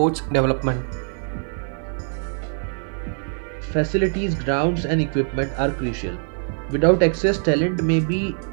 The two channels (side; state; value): left; silent; 56 dB below the other